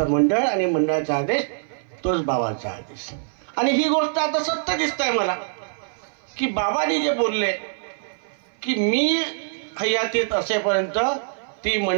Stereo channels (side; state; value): left; silent; 59 dB below the other